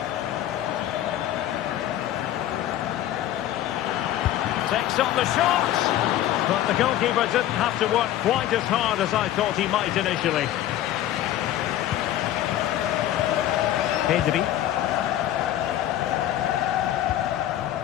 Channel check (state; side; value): quieter; right; 12.6 dB